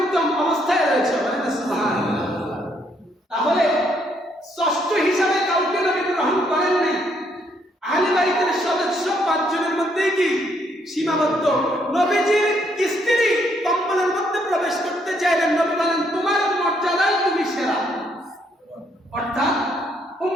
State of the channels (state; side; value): normal; both; correlation 0.71